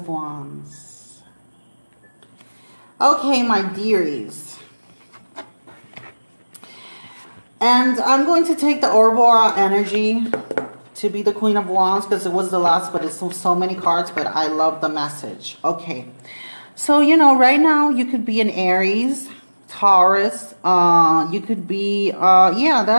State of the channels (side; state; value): both; inverted; correlation -1.00